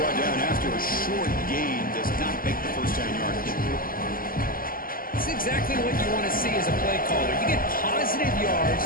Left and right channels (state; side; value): late; right; 0.42 ms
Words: down after a short gain. Does not make the first down yardage. It's exactly what you want to see as a play caller. You get positive yards